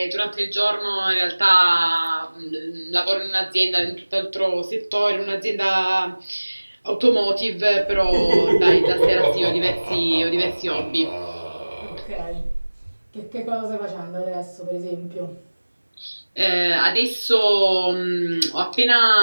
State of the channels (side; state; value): both; inverted; correlation -1.00